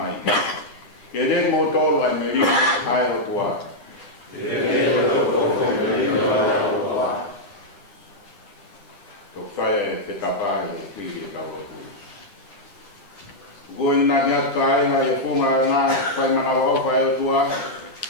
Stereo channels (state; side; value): late; right; 10 ms